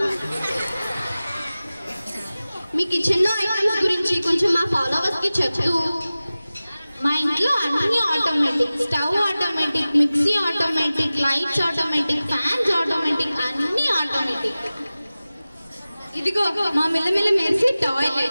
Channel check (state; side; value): inverted; both; correlation -0.97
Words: మీ కిచెన్ లో ఐటమ్స్ గురించి కొంచెం మా ఫాలోవర్స్ కి చెప్తూ. మా ఇంట్లో అన్ని automatic, stove automatic, mixie automatic, lights automatic, fans automatic, అన్ని ఆటోమేటిక్. ఇదిగో మా మిల్లమిల్ల మెరిసే